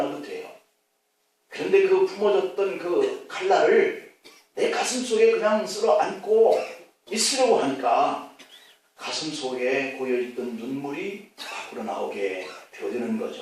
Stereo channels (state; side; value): identical; both; correlation 1.00